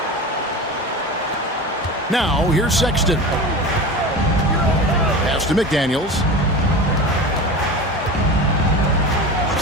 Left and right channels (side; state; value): both; normal; correlation 0.30